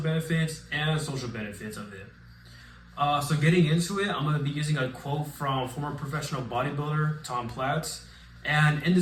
and social benefits of it. So getting into it, I'm going to be using a quote from former professional bodybuilder Tom Platz. And in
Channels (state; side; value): identical; both; correlation 1.00